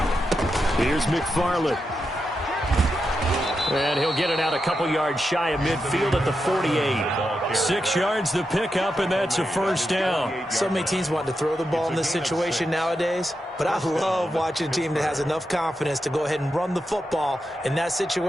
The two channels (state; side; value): normal; both; correlation 0.87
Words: Here's McFarland. And he'll get it out a couple yards shy of midfield at the 48. 6 yards the pickup, and that's a first down. So many teams want to throw the ball in this situation nowadays, but I love watching a team that has enough confidence to go ahead and run the football in that